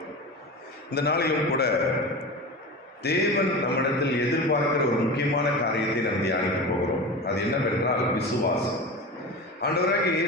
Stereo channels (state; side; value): normal; both; correlation 0.28